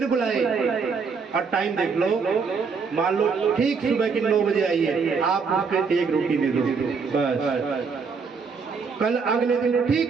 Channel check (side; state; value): left; quieter; 5.3 dB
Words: बुलाए और टाइम देख लो, मान लो ठीक सुबह की 9 बजे आई है, आप उसको 1 रोटी दे दो बस। कल अगले दिन